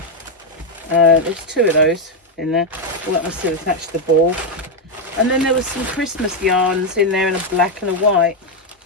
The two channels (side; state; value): both; normal; correlation 0.04